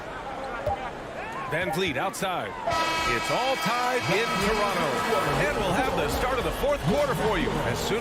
Van Vliet outside. It's all tied in Toronto. And we'll have the start of the 4th quarter for you as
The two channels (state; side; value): identical; both; correlation 1.00